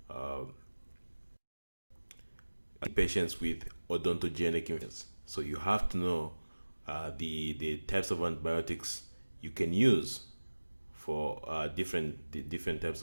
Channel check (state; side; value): inverted; both; correlation -1.00